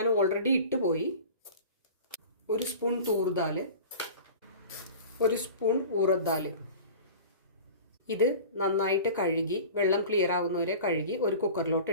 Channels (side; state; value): both; inverted; correlation -0.38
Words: ഓൾറെഡി ഇട്ട് പോയി, 1 സ്പൂൺ തൂർ ദാൽ, 1 സ്പൂൺ ഊറദ് ദാൽ. ഇത് നന്നായിട്ട് കഴുകി വെള്ളം ക്ലിയർ ആവുന്നവരെ കഴുകി ഒരു കുക്കറിലോട്ട്